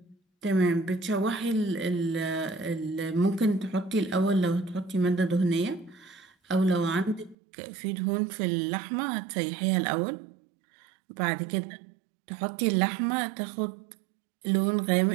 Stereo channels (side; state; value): left; drops out; at 7.4 s